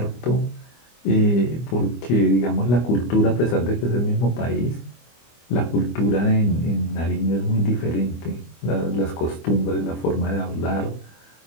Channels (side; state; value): right; late; 25 ms